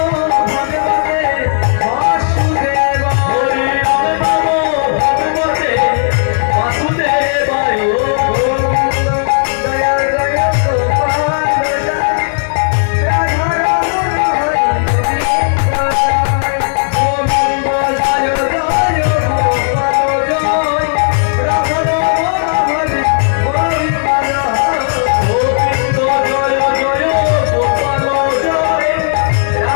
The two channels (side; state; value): right; silent; digital silence